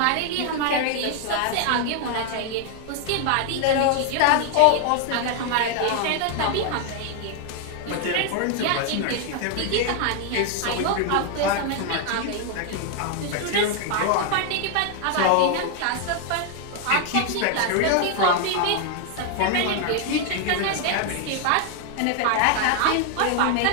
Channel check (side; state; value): both; different; correlation 0.00